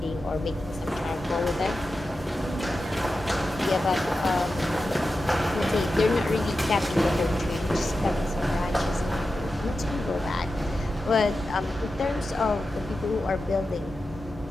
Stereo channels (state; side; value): normal; both; correlation 0.91